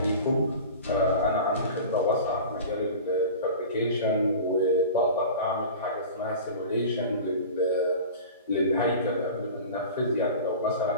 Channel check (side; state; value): both; inverted; correlation -0.36